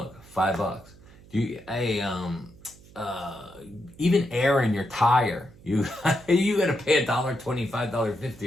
$5. Even air in your tire. You gotta pay $1.25, $1.50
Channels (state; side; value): noise; right; hum, 23 dB below the sound